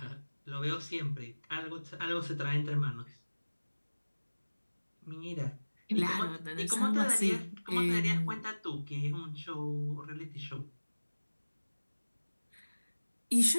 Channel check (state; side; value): inverted; both; correlation -1.00